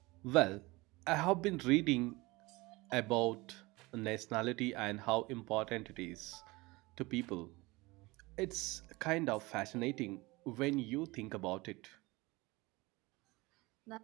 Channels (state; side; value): quieter; left; 22.6 dB